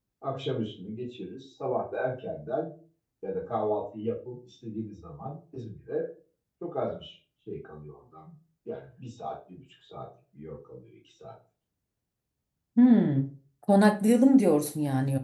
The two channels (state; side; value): identical; both; correlation 1.00